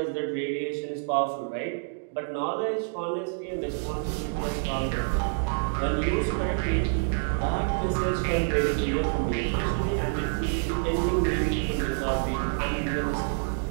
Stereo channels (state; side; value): silent; left; 60 dB below the other